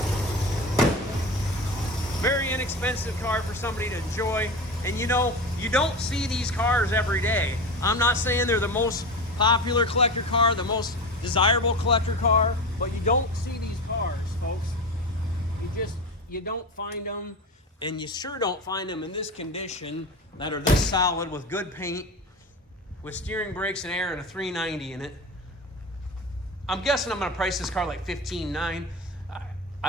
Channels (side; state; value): both; normal; correlation 0.26